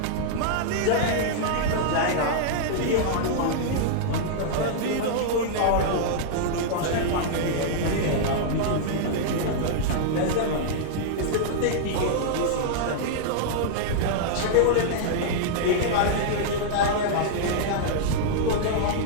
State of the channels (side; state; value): both; different; correlation -0.01